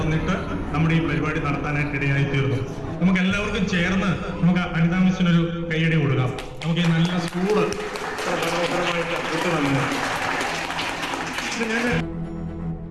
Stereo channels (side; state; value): both; identical; correlation 1.00